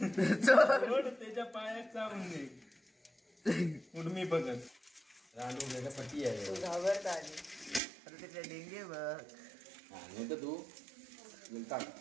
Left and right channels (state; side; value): drops out; left; at 7.8 s